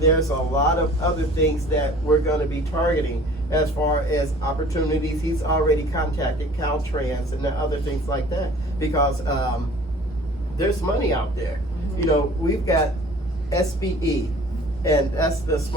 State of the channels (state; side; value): normal; both; correlation 0.49